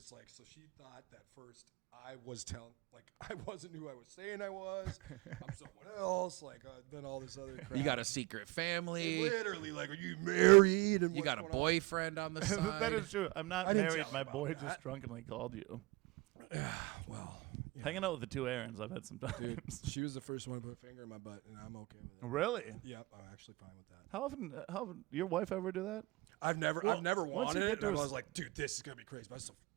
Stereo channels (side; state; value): left; quieter; 23.3 dB